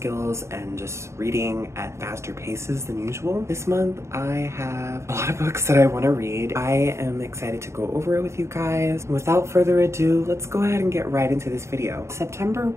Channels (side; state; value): left; late; 0.13 ms